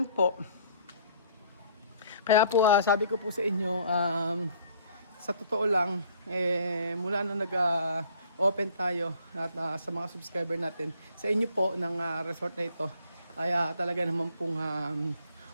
po. Kaya po, sabi ko po sa inyo, sa totoo lang, mula na nag-open tayo at sa mga subscriber natin, sa inyo po ng resort na ito, ay talaga naman pong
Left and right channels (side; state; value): both; inverted; correlation -0.58